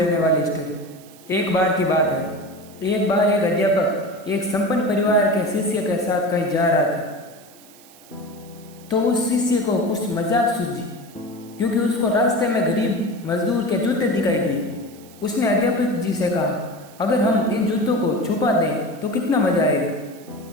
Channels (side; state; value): right; noise; hiss, 24 dB below the sound